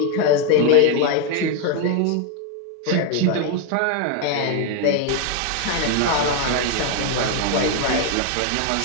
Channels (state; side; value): different; both; correlation 0.01